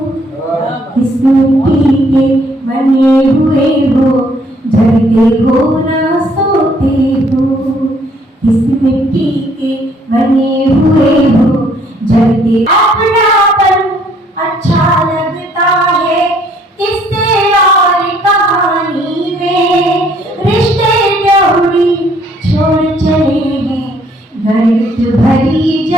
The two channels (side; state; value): both; normal; correlation 0.64